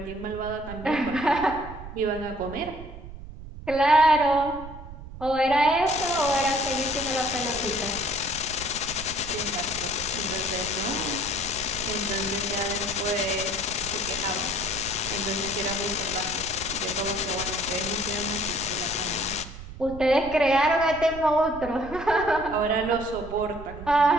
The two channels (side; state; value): right; noise; rumble, 13 dB below the sound